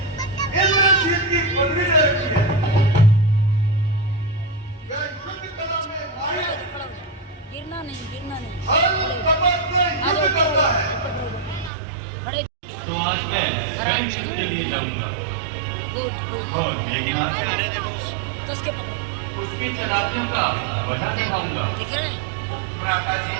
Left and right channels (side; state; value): left; drops out; at 11.7 s